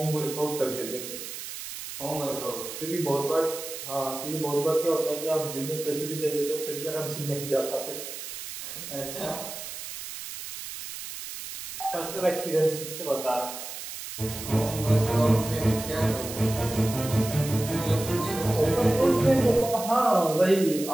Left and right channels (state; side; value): noise; right; hiss, 9 dB below the sound